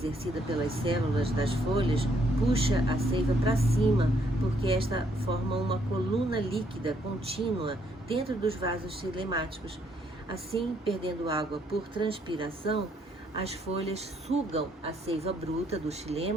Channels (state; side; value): normal; both; correlation 0.70